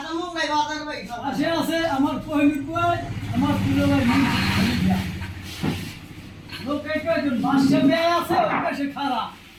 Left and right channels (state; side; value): identical; both; correlation 1.00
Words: মুঙ্গাই বাজার ভাই আছে আছে আমার পহিমির বুয়াই আমার পুরো ভাই লোক একজন বাসে বেয়ে আছে ওর কাছে খারাপ